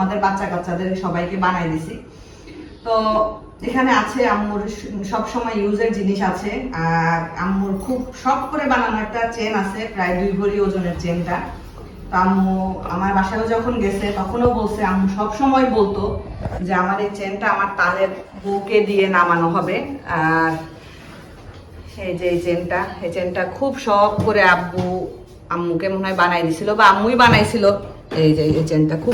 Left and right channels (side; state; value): both; identical; correlation 1.00